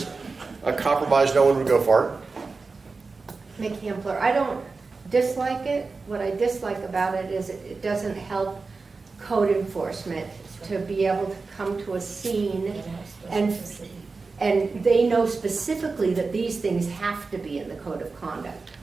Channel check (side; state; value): left; quieter; 4.2 dB